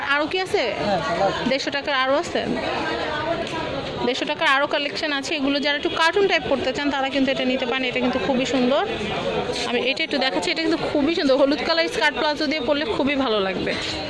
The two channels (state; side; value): identical; both; correlation 1.00